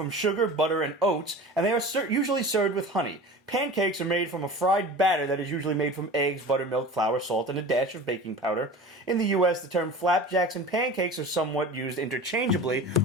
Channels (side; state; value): both; normal; correlation 0.36